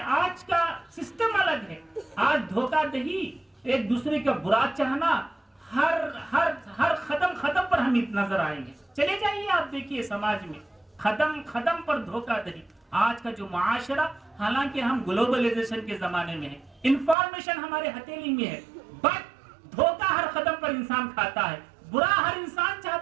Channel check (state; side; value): drops out; left; at 17.2 s